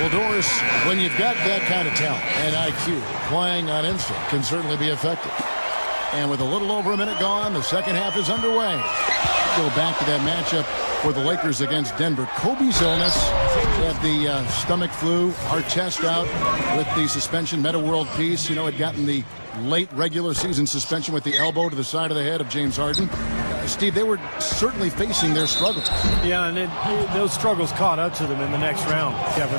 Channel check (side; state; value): both; inverted; correlation -1.00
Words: Well, Doris, when you've got that kind of talent and IQ, playing on instinct can certainly be effective. And with a little over a minute gone, the second half is underway. Go back to that matchup for the Lakers against Denver. Kobe's illness, he had the stomach flu, Artest out with the suspension, meta world peace. You know, had gotten the late regular season suspension with the elbow to the side of the head of James Harden. Steve, they were certainly facing their struggles. Yeah, and those struggles caught up to them in the next round,